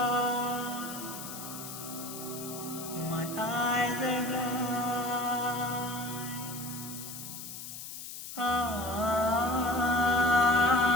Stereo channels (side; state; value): left; noise; hiss, 10 dB below the sound